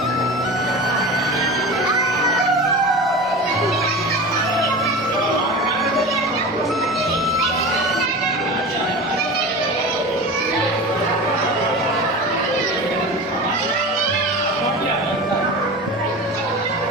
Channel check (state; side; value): normal; both; correlation 0.31